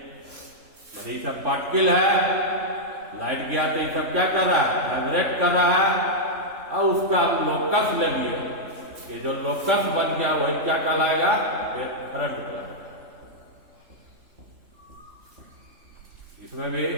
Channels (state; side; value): late; left; 3.5 ms